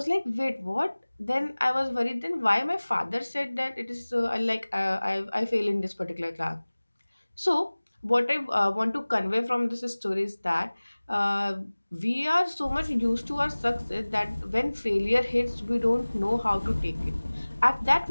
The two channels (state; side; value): inverted; both; correlation -1.00